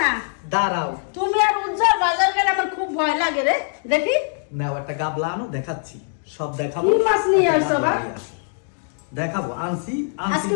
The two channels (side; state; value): right; silent; digital silence